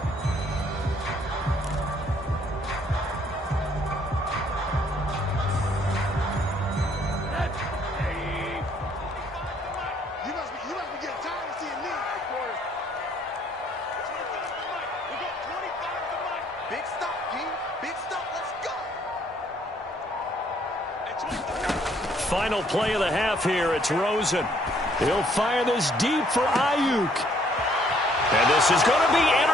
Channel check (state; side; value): normal; both; correlation 0.65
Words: Final play of the half here. It's Rosen. He'll fire this deep for Ayuk. And this is going to be